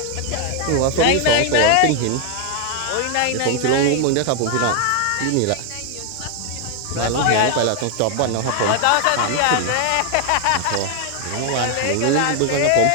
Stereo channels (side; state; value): both; different; correlation 0.00